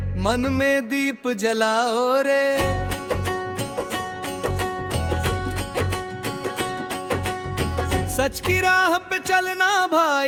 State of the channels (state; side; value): identical; both; correlation 1.00